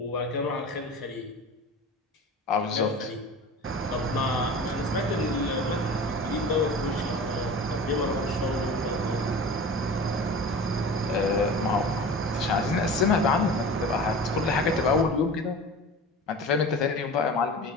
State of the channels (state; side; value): normal; both; correlation 0.36